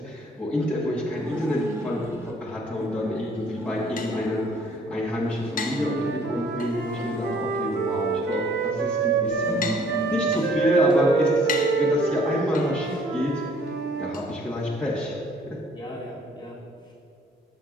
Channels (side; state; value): both; normal; correlation 0.59